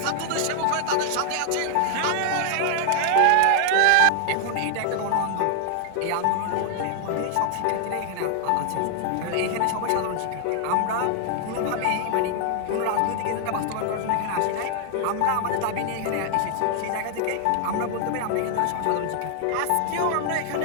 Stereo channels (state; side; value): different; both; correlation 0.00